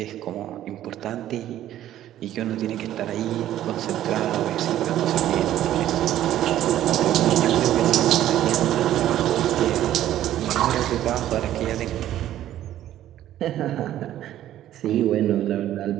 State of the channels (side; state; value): left; quieter; 12.6 dB